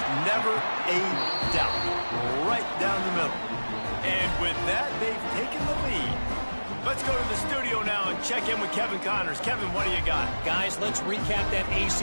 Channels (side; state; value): both; inverted; correlation -1.00